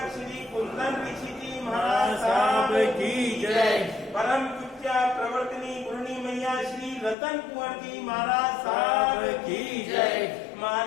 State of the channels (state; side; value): drops out; right; at 7.2 s